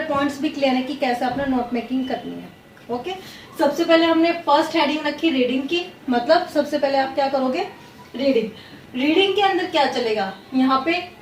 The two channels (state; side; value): identical; both; correlation 1.00